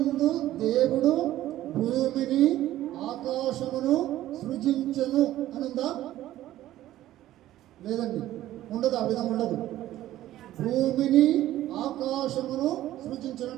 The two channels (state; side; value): quieter; left; 14.1 dB